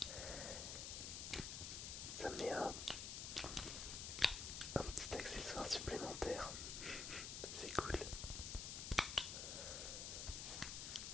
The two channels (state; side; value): noise; left; hiss, 3 dB below the sound